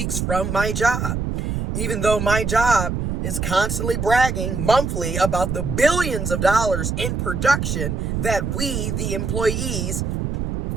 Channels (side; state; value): right; noise; rumble, 1 dB below the sound